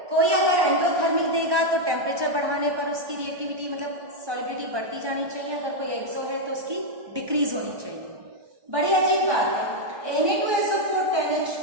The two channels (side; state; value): left; late; 1.2 ms